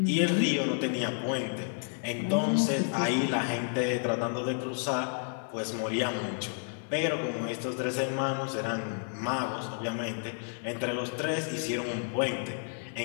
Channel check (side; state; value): right; silent; 57 dB below the other